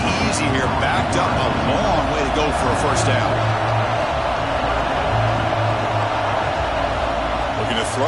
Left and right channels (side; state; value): both; identical; correlation 1.00